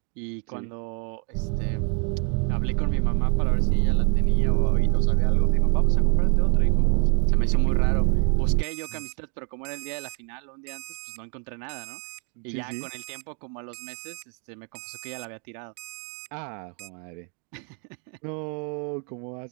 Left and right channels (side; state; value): left; quieter; 39.7 dB